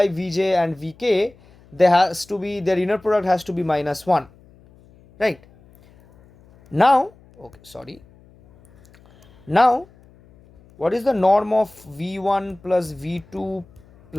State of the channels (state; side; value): noise; left; hum, 27 dB below the sound